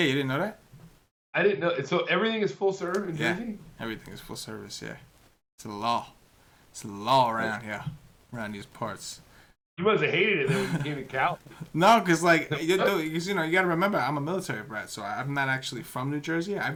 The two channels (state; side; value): identical; both; correlation 1.00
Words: you didn't know that? I didn't know. So everything is full serve in Jersey? Everything is full service. Yeah, it's a law. It's a law around here, around these parts. You must have hated it when you came to Cal. No, because you got to remember, I'm a military brat, so I'm not actually from New Jersey.